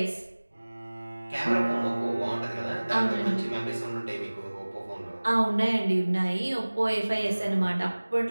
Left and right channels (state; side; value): inverted; both; correlation -1.00